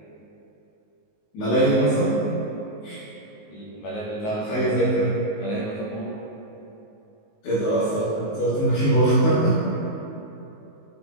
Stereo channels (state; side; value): late; right; 19 ms